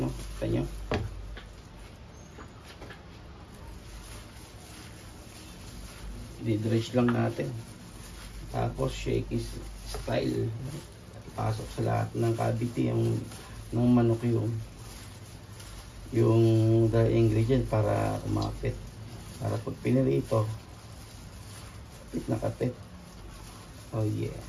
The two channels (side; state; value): both; identical; correlation 1.00